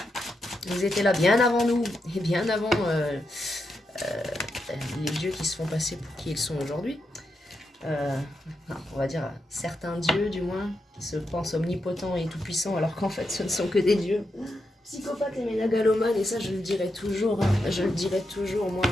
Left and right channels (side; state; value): both; normal; correlation 0.85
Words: Ils étaient là bien avant nous et bien avant les dieux qui se font passer pour qui ils sont aujourd'hui. On va dire certains dieux du moins qui se pensent omnipotents et tout-puissants alors qu'en fait ce ne sont que des dieux psychopathes et ménagalomanes, et ça je le dirai toujours. Hein. Je le dirai toujours, moi